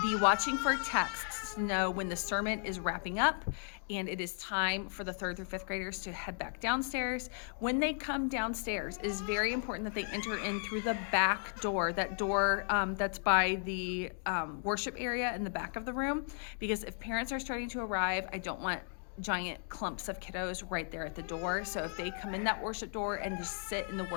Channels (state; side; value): silent; right; 54 dB below the other